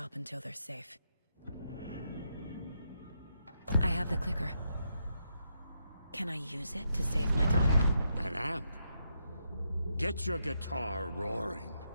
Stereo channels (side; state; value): both; inverted; correlation -0.81